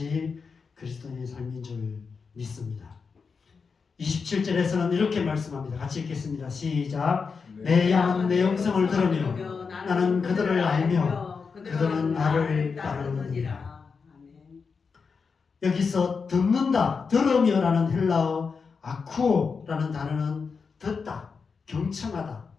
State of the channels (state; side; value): quieter; right; 5.3 dB